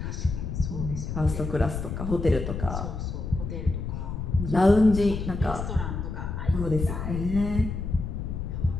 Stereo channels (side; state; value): left; noise; rumble, 4 dB below the sound